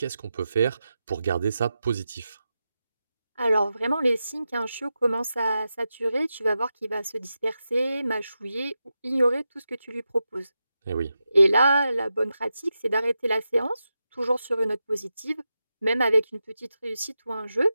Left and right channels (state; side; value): inverted; both; correlation -0.90